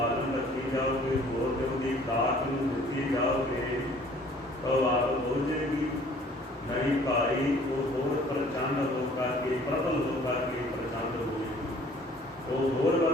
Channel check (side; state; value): both; normal; correlation 0.54